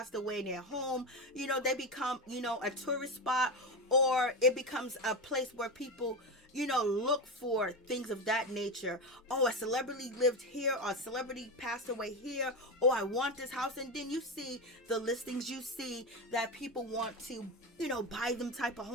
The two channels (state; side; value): normal; both; correlation 0.17